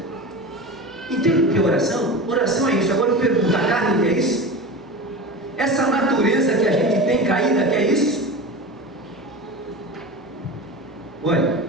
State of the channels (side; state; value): both; normal; correlation 0.29